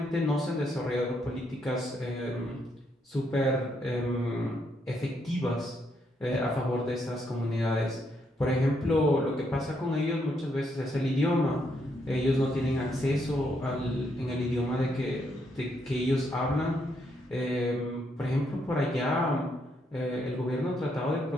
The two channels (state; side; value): normal; both; correlation 0.76